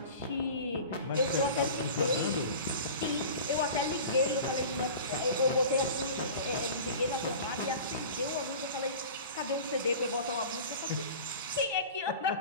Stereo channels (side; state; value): both; inverted; correlation -0.37